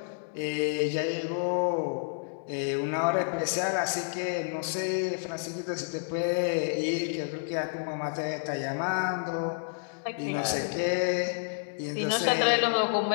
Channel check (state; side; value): silent; right; digital silence